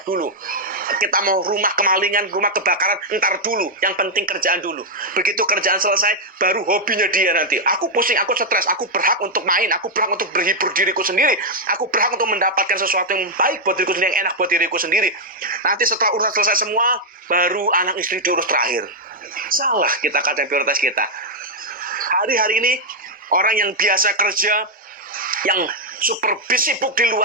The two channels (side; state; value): both; normal; correlation -0.01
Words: dulu. Kita mau rumah kemalingan, rumah kebakaran, entar dulu. Yang penting kerjaan dulu. Begitu kerjaan selesai, baru hobinya dia nanti. Aku pusing, aku stres, aku berhak untuk main, aku berhak untuk berhibur diriku sendiri. Aku berhak untuk mendapatkan sesuatu yang baik buat diriku sendiri, yang enak buat diriku sendiri. Nanti setelah urusan selesai semua, baru anak istri diurus terakhir. Salah kita kadang prioritas kita. Hari-hari ini, orang yang biasa kerja, yang super sibuk di